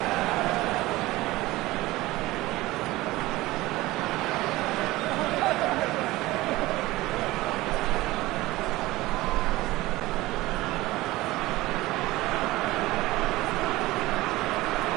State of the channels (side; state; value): left; quieter; 18.8 dB